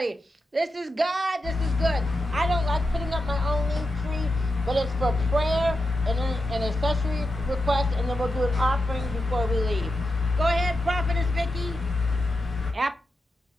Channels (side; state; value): both; normal; correlation 0.88